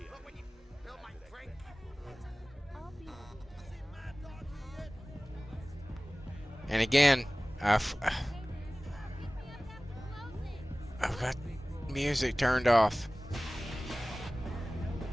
And again, I've got music turned off.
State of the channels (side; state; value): both; normal; correlation 0.98